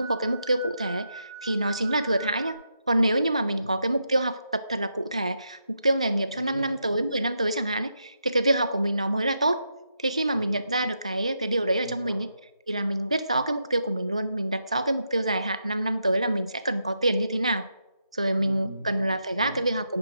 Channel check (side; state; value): both; inverted; correlation -0.83